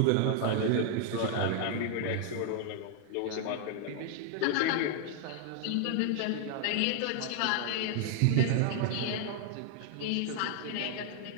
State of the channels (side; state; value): both; different; correlation 0.00